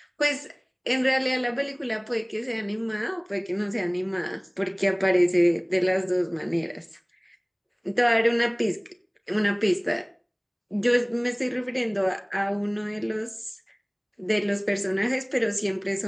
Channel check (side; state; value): both; identical; correlation 1.00